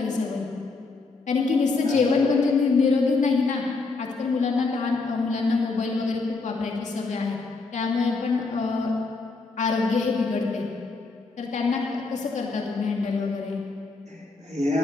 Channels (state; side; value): quieter; right; 3.9 dB